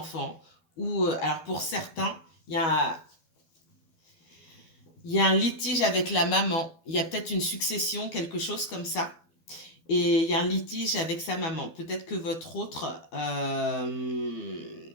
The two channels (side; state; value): right; late; 12 ms